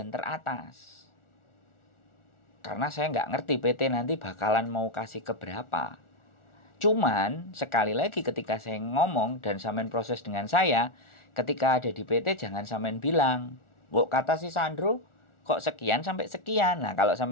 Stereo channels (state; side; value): late; right; 1.4 ms